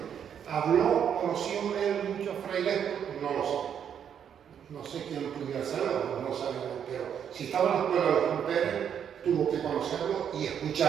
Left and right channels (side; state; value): left; quieter; 8.4 dB